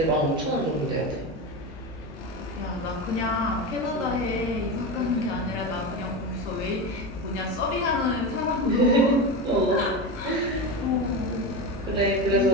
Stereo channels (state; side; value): normal; both; correlation 0.21